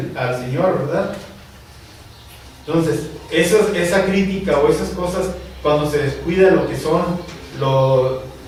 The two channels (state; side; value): identical; both; correlation 1.00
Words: al Señor, ¿verdad? Entonces, esa crítica o esas cosas, cuando se descuida lo que son